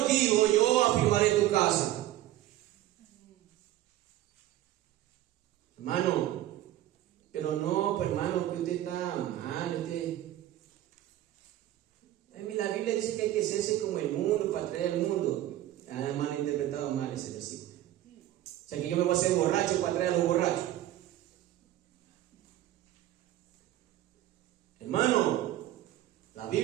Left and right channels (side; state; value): left; quieter; 14.0 dB